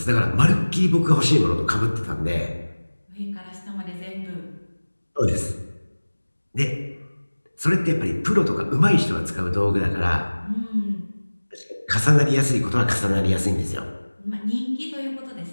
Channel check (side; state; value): both; inverted; correlation -1.00